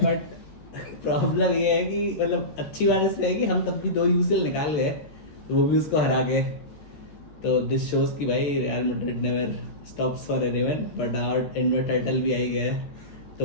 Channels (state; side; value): late; right; 13 ms